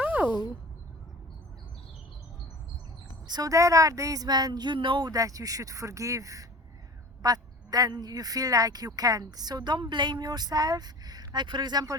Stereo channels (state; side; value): normal; both; correlation 0.39